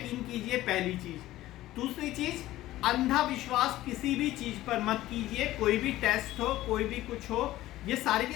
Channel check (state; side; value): quieter; right; 15.6 dB